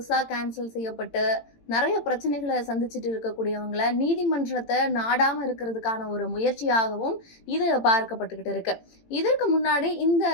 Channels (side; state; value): right; late; 18 ms